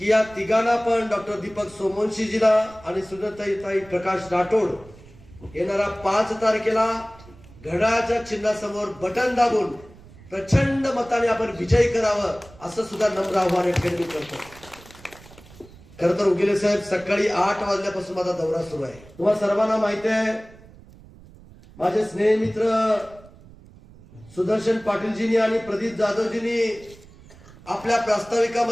या तिघांना पण डॉक्टर दीपक सोमवंशीजीला आणि सुनीताताई प्रकाश राठोड येणारा 5 तारखेला घड्याळाच्या चिन्हासमोर बटन दाबून प्रचंड मताने आपण विजयी करावं असं सुद्धा नम्र आव्हान या ठिकाणी करतो. खरं तर उगेले साहेब, सकाळी 8 वाजल्यापासून माझा दौरा सुरू आहे. तुम्हाला सर्वांना माहिती आहे, माझे स्नेह मित्र सुदर्शन पाटीलजींनी आणि प्रदीप जाधवजींनी आपल्या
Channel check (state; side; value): noise; right; rumble, 22 dB below the sound